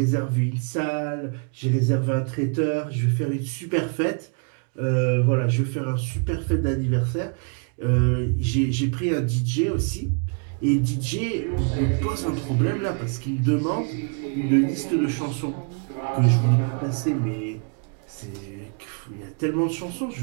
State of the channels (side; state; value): left; quieter; 39.6 dB